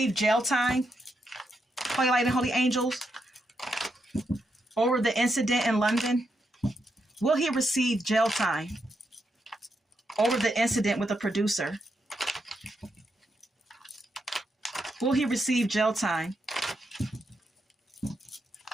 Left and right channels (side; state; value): both; normal; correlation 0.82